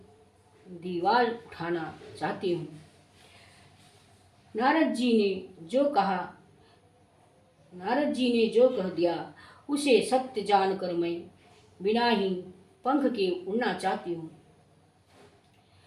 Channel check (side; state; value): both; identical; correlation 1.00